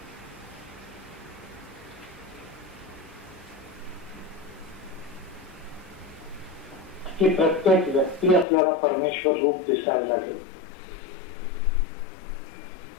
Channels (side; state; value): right; drops out; at 8.5 s